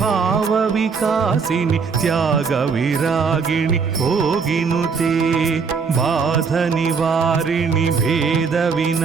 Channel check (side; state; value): left; quieter; 5.4 dB